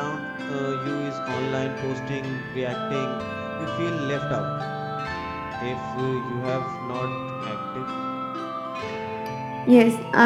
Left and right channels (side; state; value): both; identical; correlation 1.00